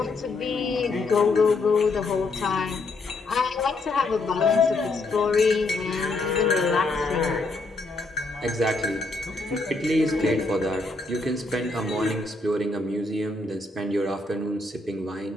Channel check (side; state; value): right; quieter; 3.2 dB